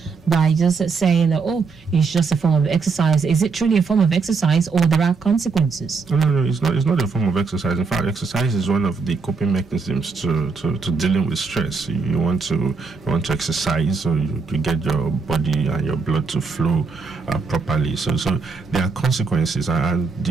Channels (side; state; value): left; quieter; 4.7 dB